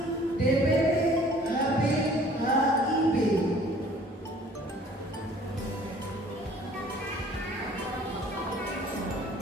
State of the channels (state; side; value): normal; both; correlation 0.53